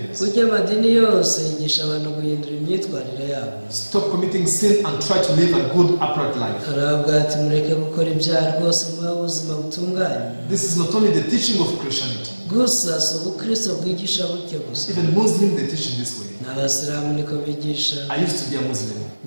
Burya amadini yose yigisha abantu guhindura imyitwarire yabo. Stop committing sin and try to live a good upright life. aravuga ati mureke gukora ibyaha rwose muba ubuzima butunganye. This is not only the teaching of Christianity. gusa si ubukristo bwigisha gutyo gusa. Even Muslims they teach in this way. n'abasilamu niko bigisha. I used to be a Muslim.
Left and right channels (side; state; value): both; inverted; correlation -1.00